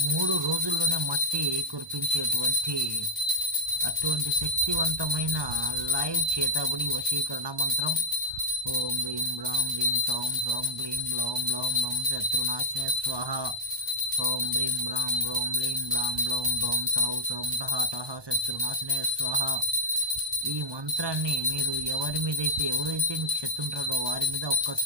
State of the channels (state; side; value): late; left; 1.2 ms